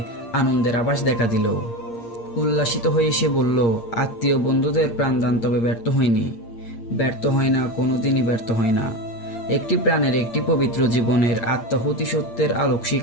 আনন্দের আভাস দেখা দিল। উল্লাসিত হয়ে সে বলল, আত্মীয় বন্ধুদের প্রাণদান তবে ব্যর্থ হয়নি, ব্যর্থ হয় না, কোনোদিনই ব্যর্থ হয় না। একটি প্রাণের, একটি পবিত্র জীবনের আত্মাহুতি সত্যের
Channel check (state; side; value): late; right; 8.6 ms